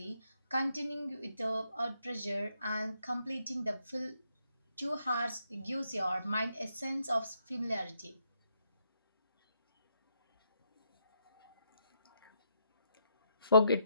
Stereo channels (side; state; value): both; inverted; correlation -0.76